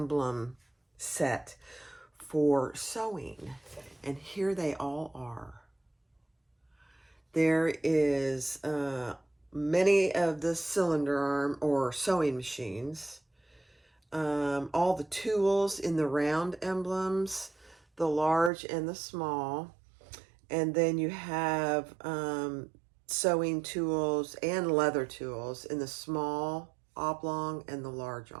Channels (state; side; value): drops out; left; at 18.5 s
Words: set for sewing, and here they all are. There is many of the cylinder arm or sewing machines, all the tools in the round emblems, the large and the small, and then you have sewing tools and leather tools in the small oblong and the large